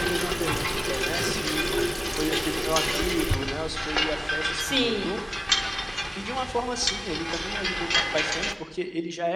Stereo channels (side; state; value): both; identical; correlation 1.00